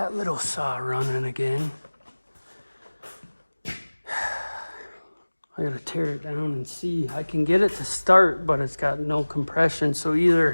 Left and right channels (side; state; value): both; inverted; correlation -1.00